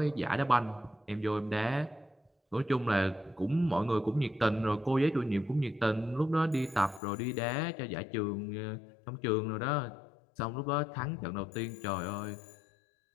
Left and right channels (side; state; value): right; drops out; at 7.0 s